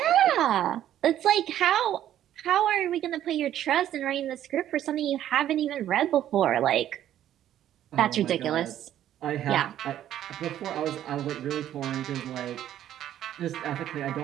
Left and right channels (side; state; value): left; quieter; 11.6 dB